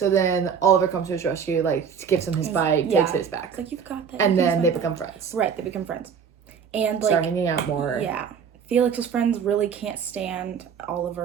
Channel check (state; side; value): quieter; left; 7.0 dB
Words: then Oliver comes to his rescue, gives him his bike, takes his back. It's you've got that. And then they become friends. Right, they become friends. And start hanging out more. Yeah. Felix's friends really can't stand